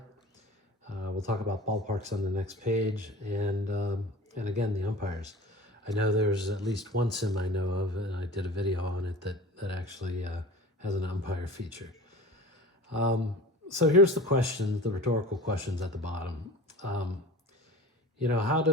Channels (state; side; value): normal; both; correlation 0.38